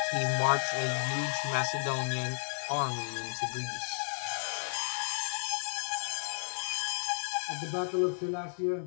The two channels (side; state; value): right; silent; digital silence